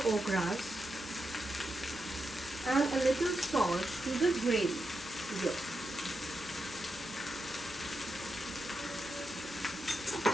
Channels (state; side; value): normal; both; correlation 0.86